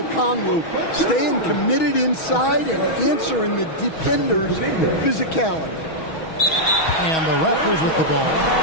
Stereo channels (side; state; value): right; late; 6.2 ms